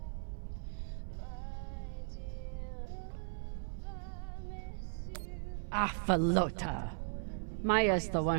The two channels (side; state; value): left; silent; 53 dB below the other